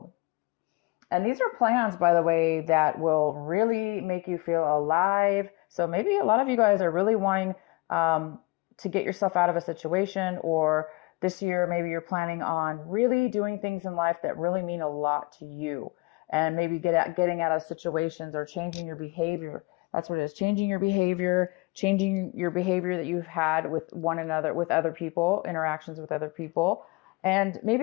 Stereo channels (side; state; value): right; quieter; 25.8 dB